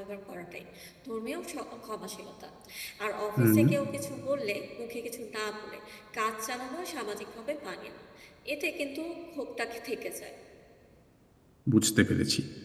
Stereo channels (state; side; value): identical; both; correlation 1.00